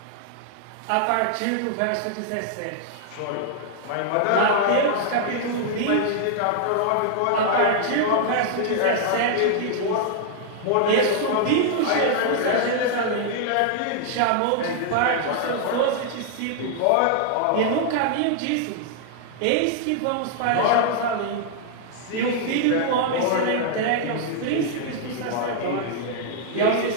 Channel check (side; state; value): both; different; correlation -0.01